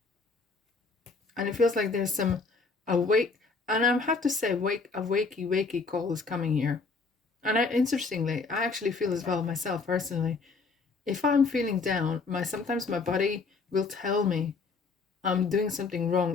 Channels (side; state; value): right; quieter; 4.3 dB